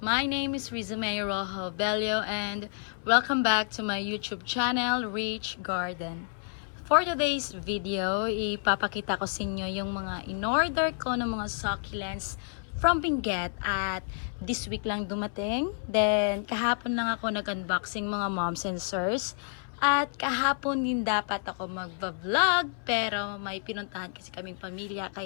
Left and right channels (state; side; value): silent; right; 58 dB below the other